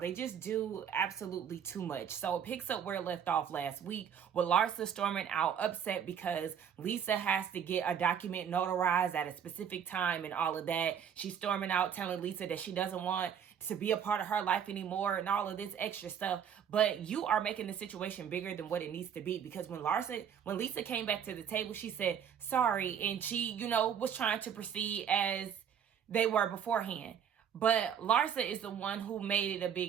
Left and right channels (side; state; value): left; quieter; 8.3 dB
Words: just do absolutely too much. So it picks up where it left off last week with Larsa storming out upset because Lisa has to get a document notarized at a specific time and all of that. She's storming out telling Lisa that she doesn't want to be a part of her life anymore and all of this extra stuff. But you are making the situation bigger than what it needs to be, because when Lisa came back to the table, she said sorry, and she, was trying to proceed as they were beforehand. But Larsa is the one who made it a